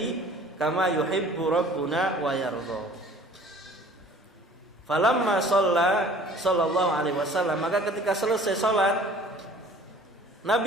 kama yuhibbu rabbuna wa yardha. Falamma sallallahu alaihi wasallam, maka ketika selesai salat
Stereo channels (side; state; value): both; normal; correlation 0.49